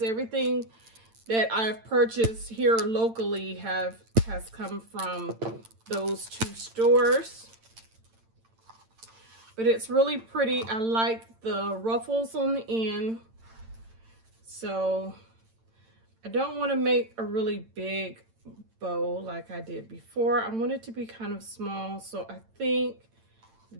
Everything that I've purchased here locally has come from those 2 stores. But it's really pretty. I like the ruffles on the end. So I don't want to make a really big bow like I did before. I want it to be kind of small, so I think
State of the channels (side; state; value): left; late; 8.9 ms